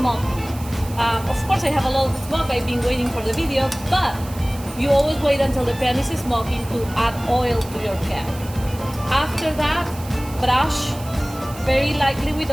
Of course, I have a lot of smoke. I've been waiting for the video, but you always wait until the pan is smoking to add oil to your pan. After that, brush very lightly with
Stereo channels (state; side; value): noise; right; hiss, 17 dB below the sound